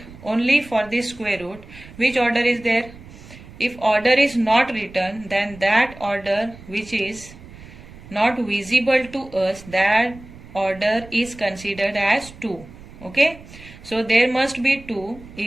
only for this square root, which order is there? If order is not written, then that order which is not visible to us, that order is considered as 2. Okay, so there must be 2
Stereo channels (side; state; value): right; noise; rumble, 19 dB below the sound